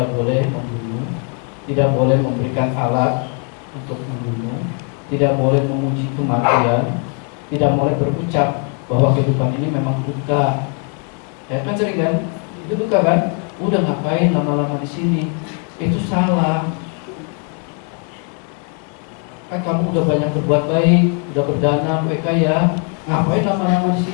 boleh membunuh, tidak boleh memberikan alat untuk membunuh, tidak boleh memuji kematian, tidak boleh berucap bahwa kehidupan ini memang duka. Ya kan sering kan? Itu duka kan? Udah ngapain lama-lama di sini? Itu salah. Kan kamu udah banyak berbuat baik, udah berdana, udah kaya, ngapain lama-lama di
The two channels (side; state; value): right; quieter; 40.0 dB